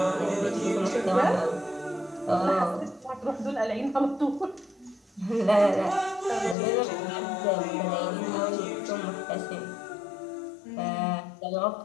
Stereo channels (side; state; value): right; drops out; at 6.6 s